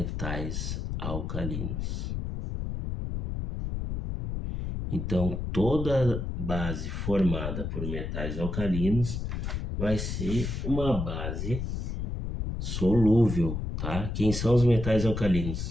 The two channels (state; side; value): noise; left; rumble, 3 dB below the sound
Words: Então, toda base formada por metais alcalinos vai ser uma base solúvel, tá? Quem são os metais